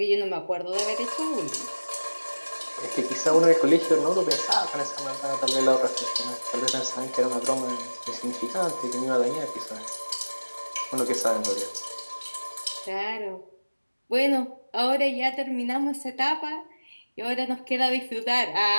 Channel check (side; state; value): both; inverted; correlation -1.00